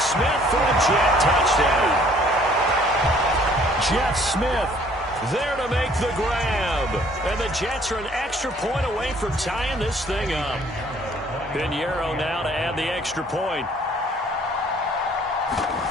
for a Jet touchdown. Jeff Smith there to make the grab. And the Jets are an extra point away from tying this thing up. Pinheiro now to add the extra point.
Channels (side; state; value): both; normal; correlation 0.59